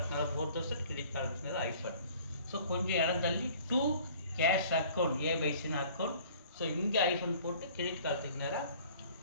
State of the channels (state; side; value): inverted; both; correlation -0.51